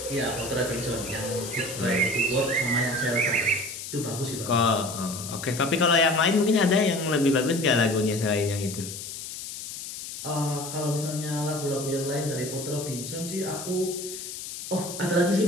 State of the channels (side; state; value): left; noise; hiss, 9 dB below the sound